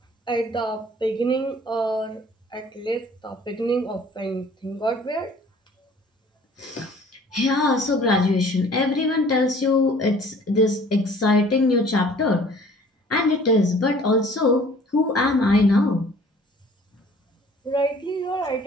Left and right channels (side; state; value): both; normal; correlation 0.52